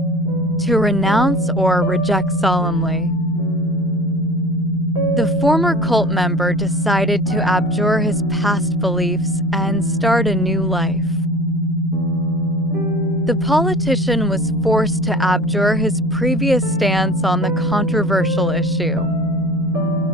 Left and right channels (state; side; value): normal; both; correlation 0.40